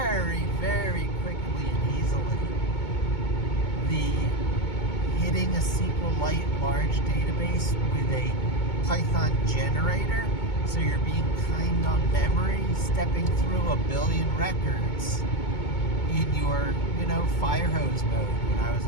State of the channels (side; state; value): right; late; 2.2 ms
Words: very quickly and easily. Hitting a SQLite large database with a Python generator, so you're being kind on memory, stepping through 1 billion records in your, Firehose mode. When I was